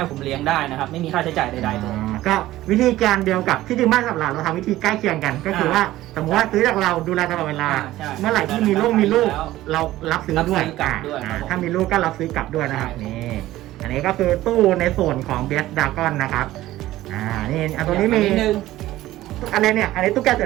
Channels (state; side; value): quieter; left; 15.5 dB